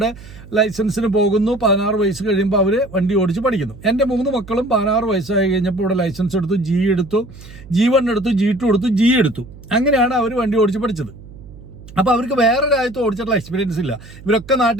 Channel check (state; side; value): noise; right; hum, 18 dB below the sound